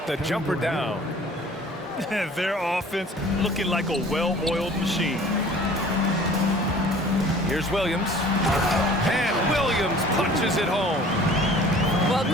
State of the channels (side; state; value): both; normal; correlation 0.49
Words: jumper down. Their offense looking like a well-oiled machine. Here's Williams. And Williams punches it home. Well,